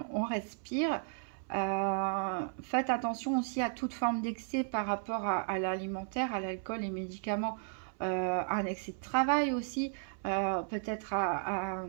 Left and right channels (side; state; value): left; silent; 55 dB below the other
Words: on respire. Faites attention aussi à toute forme d'excès par rapport à l'alimentaire, à l'alcool, les médicaments, un excès de travail aussi, peut-être à